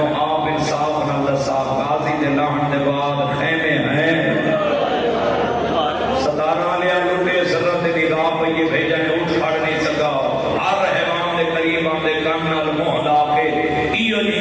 آپ انصاف نہ صاحب غازی دے لہن دے بعد خیمے ہیں صدارہ لیا لٹے سرت دی نگاہ پئیے بھیجا نے اٹھ پڑ نہیں سکا ہر رحمان دے قریب آندے کان نال منہ لا کے ایو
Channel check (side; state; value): both; identical; correlation 1.00